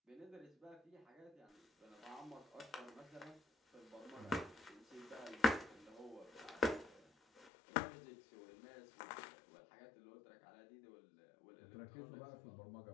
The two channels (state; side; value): drops out; right; at 7.5 s